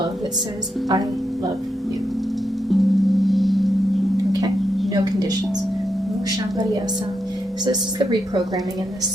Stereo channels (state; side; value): normal; both; correlation 0.83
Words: that says, I love you. Okay? No conditions. So this is the reprogramming in this